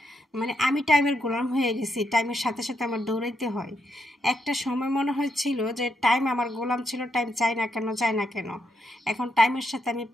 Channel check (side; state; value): both; normal; correlation 0.80